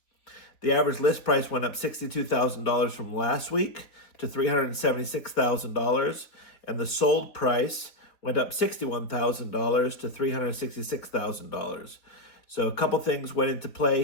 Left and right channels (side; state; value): right; late; 4.2 ms